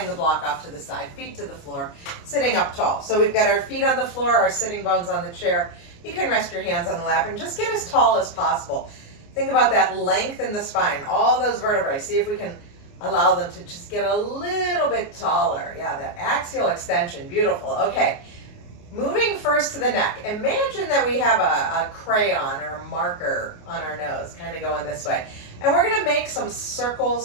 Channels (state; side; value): late; right; 29 ms